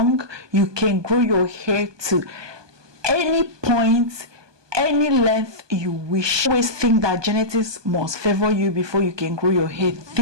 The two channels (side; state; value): left; late; 1.2 ms